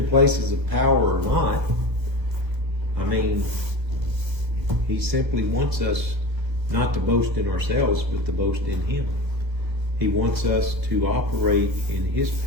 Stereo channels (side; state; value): left; late; 1.5 ms